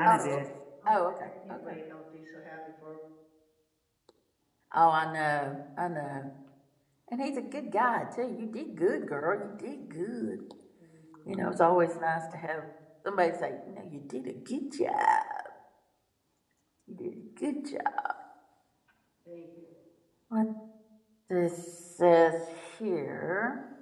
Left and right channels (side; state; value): both; identical; correlation 1.00